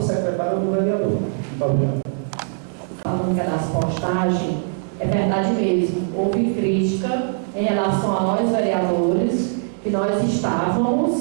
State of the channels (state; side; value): silent; left; 65 dB below the other